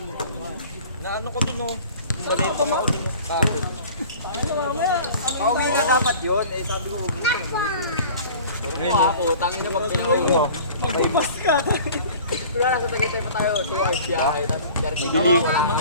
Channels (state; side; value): inverted; both; correlation -0.44